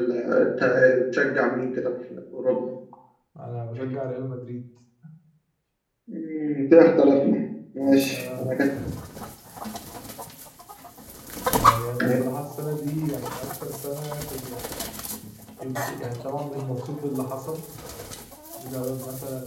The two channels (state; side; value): identical; both; correlation 1.00